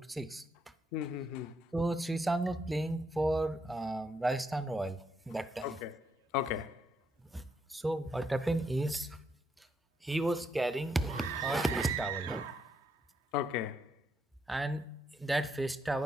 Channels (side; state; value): both; normal; correlation 0.77